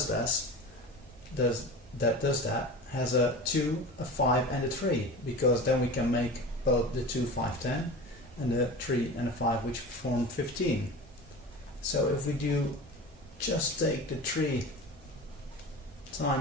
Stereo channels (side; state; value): both; normal; correlation 0.33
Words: that has a 2, a 5 and a 3, because then we can make both the 2, 5, 10 and the 3 and a 5, which form 15. So if we do just take the 2